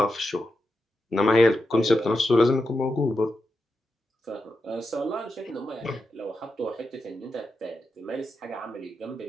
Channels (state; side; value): normal; both; correlation 0.87